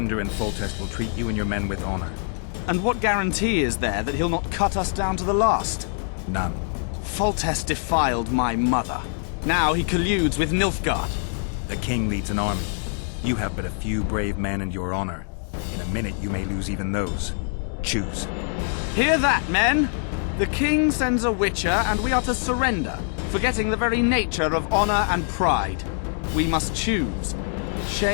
and Foltest will treat you and your men with honor. And what guarantee is there that he'll not cut us down to the last? None. Foltest defiled my mother. Now he colludes with Nilfgaard. The king leads an army. You have but a few brave men and your honor. In a minute you may lose even those. Choose. Hear that, men! The king sends a witcher and we are to surrender, forgetting the very nature of honor and pride. We must choose.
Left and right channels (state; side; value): silent; right; 58 dB below the other